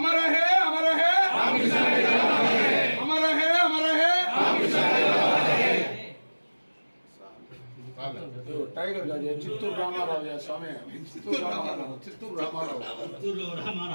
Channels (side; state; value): both; inverted; correlation -1.00